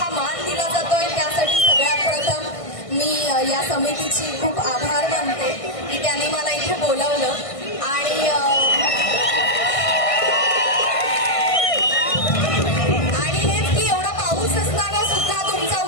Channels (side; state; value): right; late; 1.5 ms